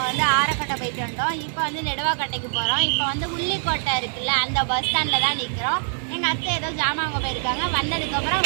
ஆரக்கட்டை போயிட்டு வந்தோம். இப்போ நெடுவாக்கட்டைக்கு போகிறோம். இப்போ உள்ளிக்கோட்டை இருக்குல்ல, அந்த பஸ் ஸ்டாண்டில் தான் நிற்கிறோம். எங்கள் அத்தை ஏதோ ஜாமான் அங்கே போயிருக்காங்க. வந்ததுக்கப்புறம்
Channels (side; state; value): left; silent; digital silence